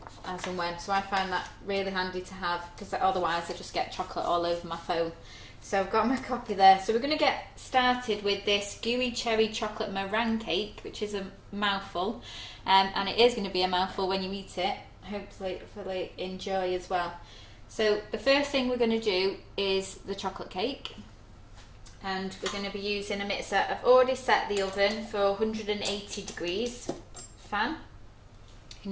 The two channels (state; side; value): identical; both; correlation 1.00